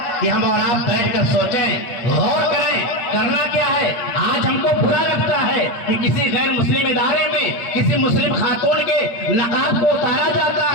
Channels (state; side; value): late; right; 8.7 ms